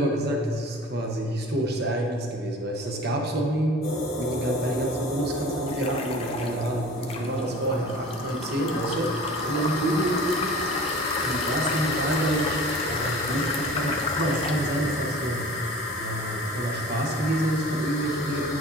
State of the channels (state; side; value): normal; both; correlation 0.42